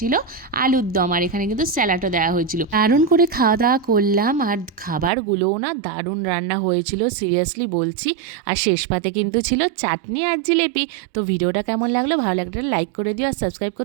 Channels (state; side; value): drops out; left; at 5.1 s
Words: আলুর দম, আর এখানে কিন্তু স্যালাডও দেওয়া হয়েছিল। দারুণ করে খাওয়া দাওয়া করলাম, আর খাবারগুলোও না দারুণ রান্না হয়েছিল, সিরিয়াসলি বলছি। আর শেষ পাতে কিন্তু ছিল চাটনি আর জিলেপি। তো ভিডিওটা কেমন লাগলো, ভালো লাগলে লাইক করে দিও, আর সাবস্ক্রাইব